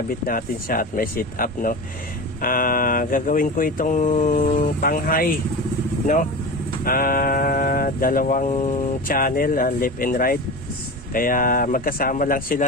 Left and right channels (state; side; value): normal; both; correlation 0.28